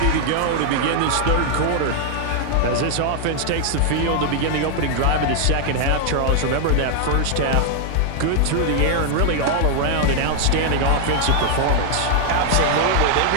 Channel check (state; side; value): different; both; correlation 0.00